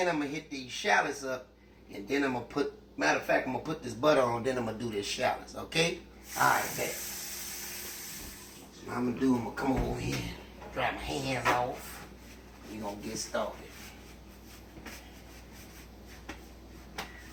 I'm going to hit these shallots up. And then I'm going to put, matter of fact, I'm going to put this butter on. Then I'm going to do this shallots, okay? Alright, bet. So what I'm going to do, I'm going to come over here, dry my hands off. We're going to get started.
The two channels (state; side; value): identical; both; correlation 1.00